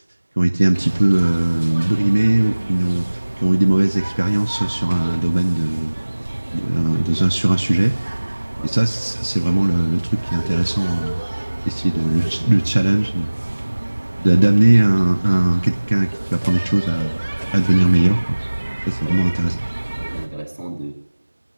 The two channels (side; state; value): both; inverted; correlation -1.00